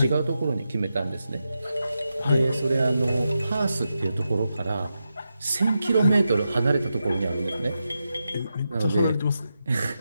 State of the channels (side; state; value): both; inverted; correlation -0.88